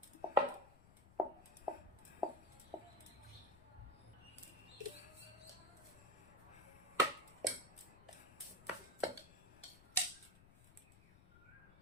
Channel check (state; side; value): noise; left; rumble, 21 dB below the sound